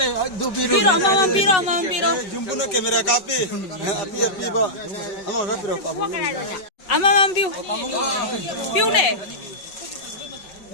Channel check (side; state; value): right; late; 5.3 ms